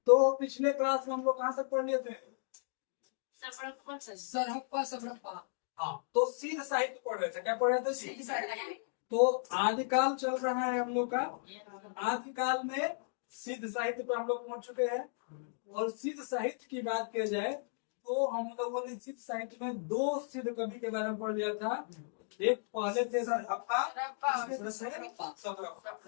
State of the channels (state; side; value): silent; right; digital silence